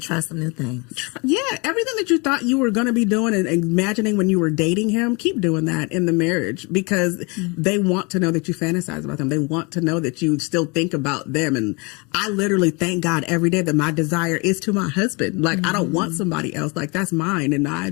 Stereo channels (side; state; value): right; quieter; 29.6 dB